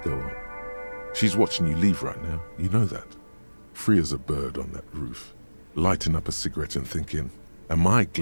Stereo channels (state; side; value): inverted; both; correlation -1.00